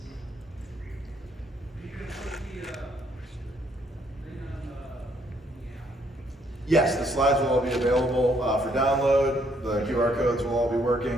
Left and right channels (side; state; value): both; normal; correlation 0.69